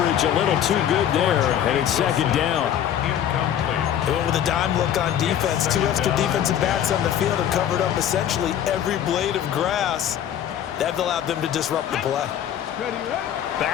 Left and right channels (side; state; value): right; quieter; 10.2 dB